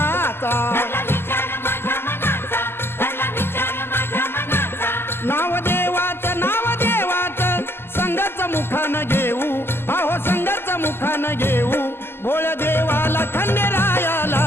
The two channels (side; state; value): right; late; 0.11 ms